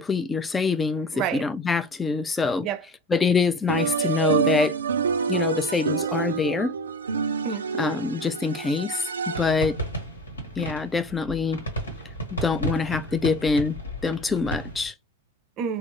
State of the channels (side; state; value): both; normal; correlation 0.38